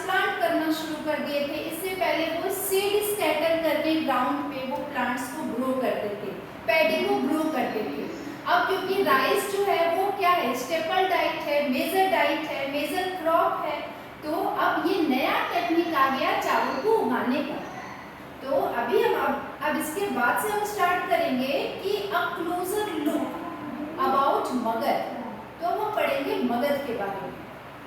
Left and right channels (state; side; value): identical; both; correlation 1.00